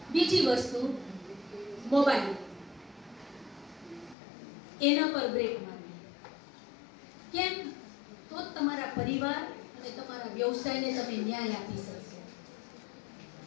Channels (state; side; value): drops out; right; at 4.2 s